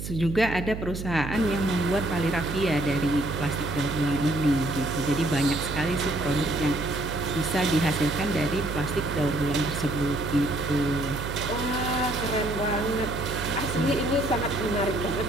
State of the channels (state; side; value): noise; right; hum, 7 dB below the sound